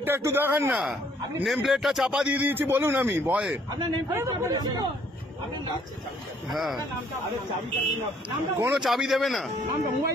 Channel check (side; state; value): both; normal; correlation 0.64